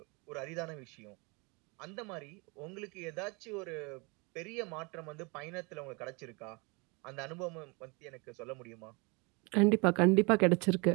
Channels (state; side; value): quieter; left; 29.7 dB